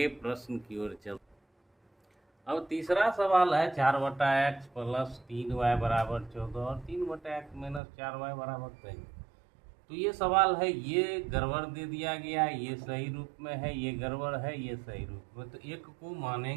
प्रश्न की ओर चल। अब तीसरा सवाल है 4/x + 3y बराबर 14 और 3/x - 4y बराबर 23। तो ये सवाल है, ये गड़बड़ दे दिया गया, ये सही रूप में है, ये गड़बड़ है, ये सही रूप में। तो एक को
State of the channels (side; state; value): left; drops out; at 7.8 s